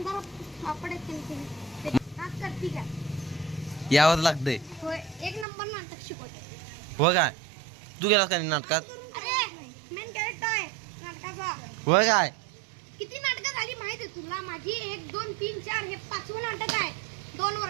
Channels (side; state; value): left; drops out; at 5.5 s